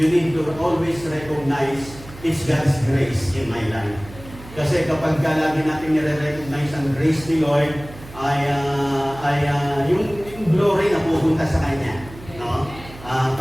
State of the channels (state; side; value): noise; right; hum, 17 dB below the sound